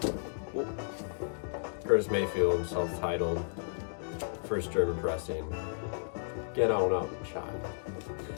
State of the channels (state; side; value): silent; right; digital silence